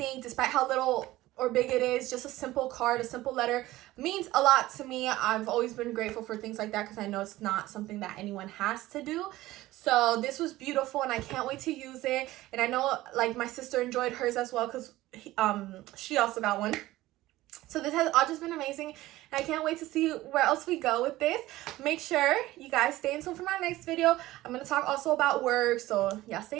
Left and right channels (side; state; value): left; quieter; 17.0 dB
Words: despite how little or big it is. Just a simple card, a simple letter means a lot to me. I've always been grateful for things like that because I know it's not something that anyone has to do. So this was beautiful, and I can't wait to use it. And I know like my sister enjoyed hers as well because she also got one. So this has all just been amazing, and I can't wait to see where else we go with this. Make sure you guys stay tuned for my next video. I'm going to talk also about work, so y'all